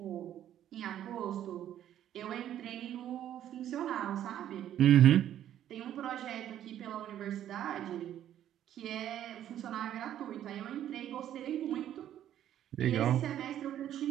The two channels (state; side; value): quieter; left; 11.2 dB